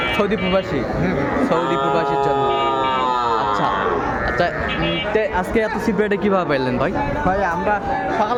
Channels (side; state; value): both; identical; correlation 1.00